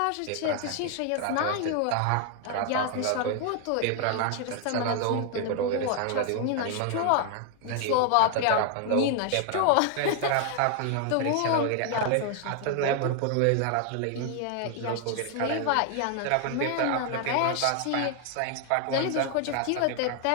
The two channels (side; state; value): both; different; correlation 0.00